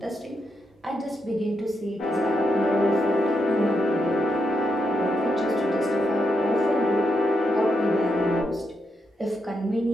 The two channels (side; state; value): both; normal; correlation 0.82